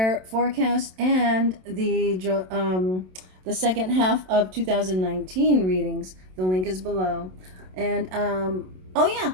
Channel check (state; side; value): late; left; 27 ms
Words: forecast and the second half of 2019 readings. The link is below. And oh yeah,